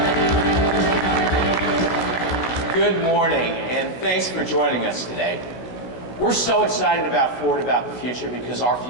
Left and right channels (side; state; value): right; late; 17 ms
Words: Good morning, and thanks for joining us today. We're so excited about Ford, about the future, because our